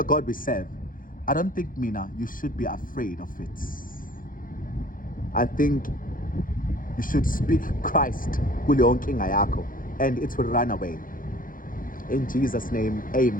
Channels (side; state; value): right; late; 0.40 ms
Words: God we serve. I don't think, Mina, you should be afraid of it. I think you should speak Christ kule yonke inkinga yakho and it will run away. In Jesus' name,